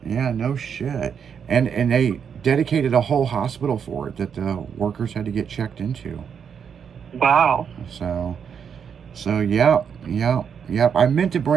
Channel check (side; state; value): left; quieter; 7.2 dB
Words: Yeah, no shit. And they dedicated a whole hospital for it that the workers had to get checked into. Wow. So yep. I meant to